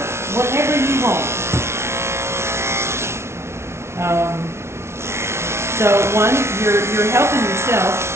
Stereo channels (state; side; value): late; left; 0.13 ms